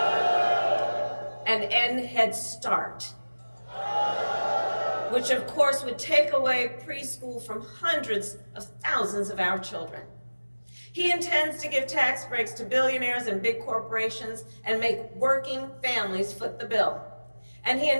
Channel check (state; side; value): inverted; both; correlation -1.00